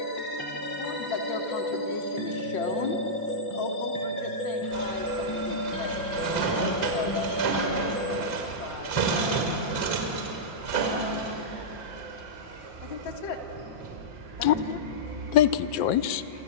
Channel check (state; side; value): late; right; 5.8 ms